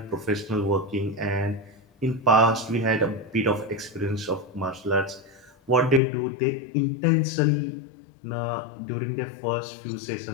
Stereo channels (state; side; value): drops out; right; at 6.0 s